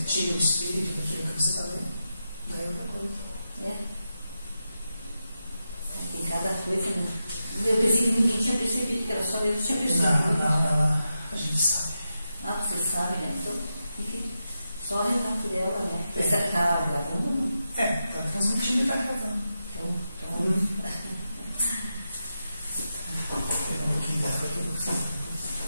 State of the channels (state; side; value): inverted; both; correlation -0.89